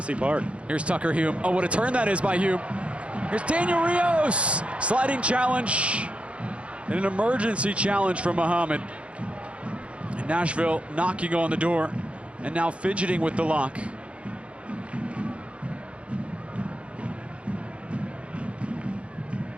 Park. Here's Tucker Hume. Oh, what a turn that is by Hume. Here's Daniel Rios. Sliding challenge. And an emergency challenge from Muhammad. And Nashville knocking on the door and now fidgeting with the lock.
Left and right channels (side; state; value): left; late; 0.060 ms